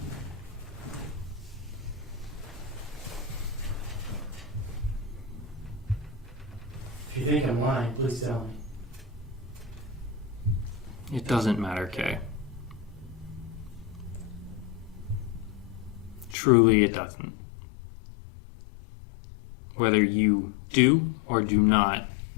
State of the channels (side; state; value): right; drops out; at 16.4 s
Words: If you think I'm lying, please tell me. It doesn't matter, Kay. Truly, it doesn't. Whether you do or do not